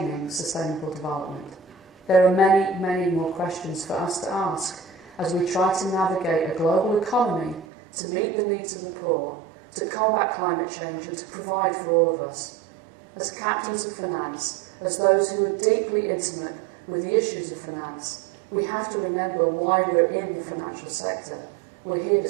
sustainable development. There are many, many more questions for us to ask as we try to navigate a global economy to meet the needs of the poor, to combat climate change and to provide for all of us. As captains of finance, as those who are deeply intimate with the issues of finance, we have to remember why we're in the financial sector. We're here to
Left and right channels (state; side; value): drops out; left; at 7.7 s